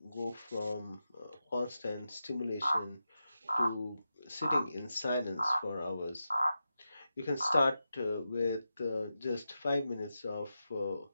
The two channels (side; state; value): both; inverted; correlation -0.90